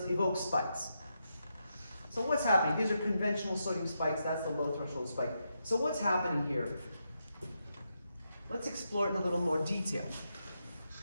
evokes spikes. So what's happening? These are conventional sodium spikes. That's the low threshold spike. So what's happening here? Let's explore it in a little more detail.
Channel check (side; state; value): both; inverted; correlation -0.84